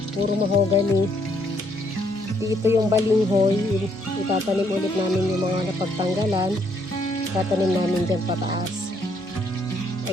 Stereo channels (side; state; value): both; normal; correlation 0.70